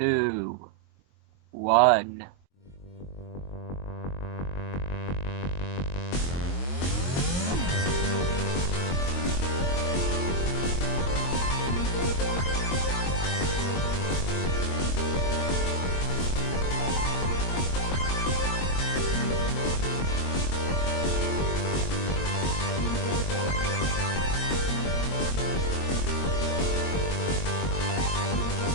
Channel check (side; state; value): right; late; 22 ms